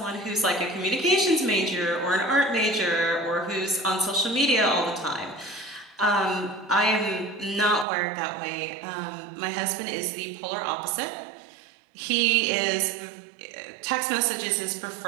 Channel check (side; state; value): left; drops out; at 7.9 s